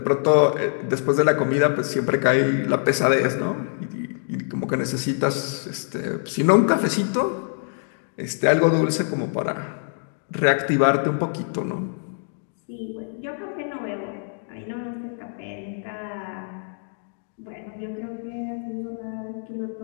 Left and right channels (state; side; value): silent; right; 62 dB below the other